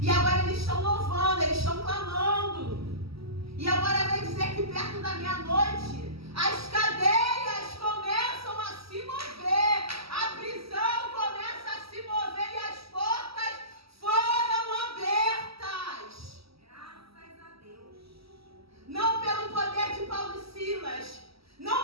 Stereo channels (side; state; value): left; late; 0.76 ms